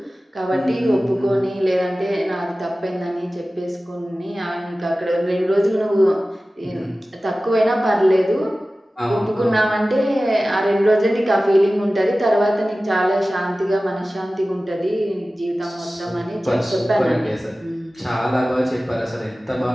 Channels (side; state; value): both; normal; correlation 0.96